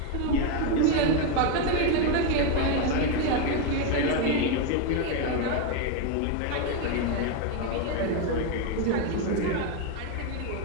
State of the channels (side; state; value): both; different; correlation 0.02